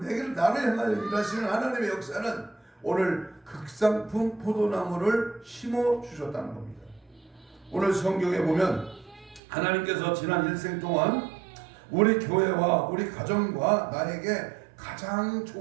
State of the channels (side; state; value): left; drops out; at 9.4 s